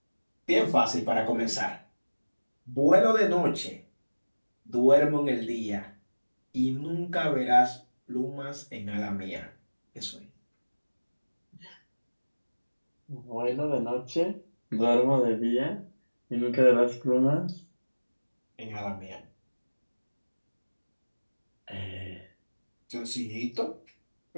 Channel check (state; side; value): inverted; both; correlation -1.00